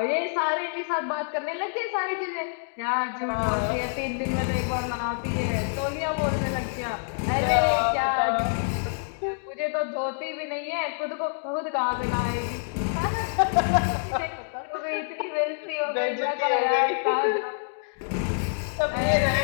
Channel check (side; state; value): right; silent; digital silence